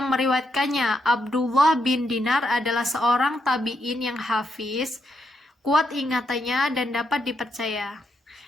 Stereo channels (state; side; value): normal; both; correlation 0.80